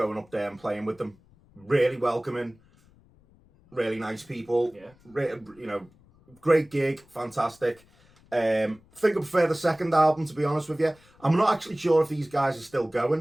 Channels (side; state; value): left; noise; rumble, 29 dB below the sound